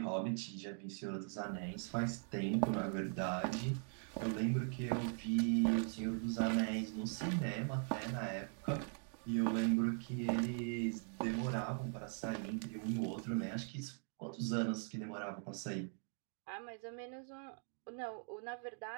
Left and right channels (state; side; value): silent; left; 50 dB below the other